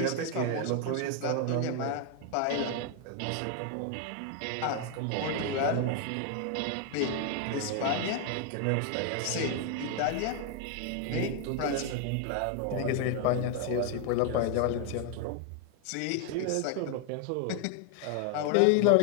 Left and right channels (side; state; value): both; different; correlation 0.00